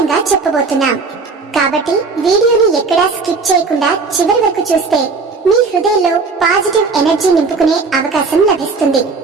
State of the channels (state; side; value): quieter; left; 4.4 dB